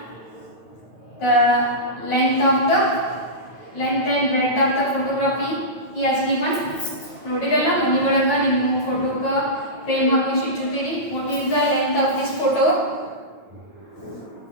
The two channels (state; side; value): late; right; 9.1 ms